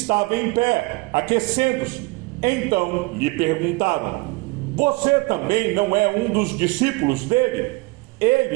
em pé, aquecendo-se. Então lhe perguntaram: "Você também não é um dos discípulos dele?"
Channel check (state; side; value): quieter; left; 24.4 dB